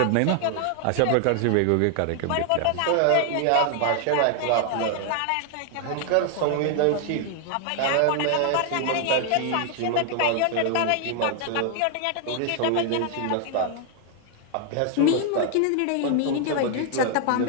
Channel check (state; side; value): different; both; correlation 0.00